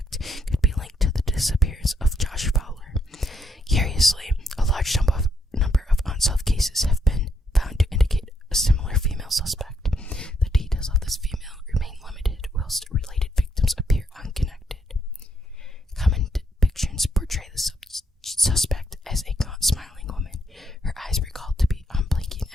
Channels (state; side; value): normal; both; correlation 0.75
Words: could be linked to the disappearance of